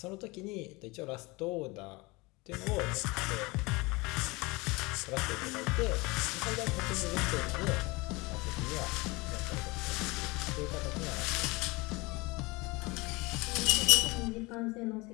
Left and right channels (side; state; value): right; quieter; 24.5 dB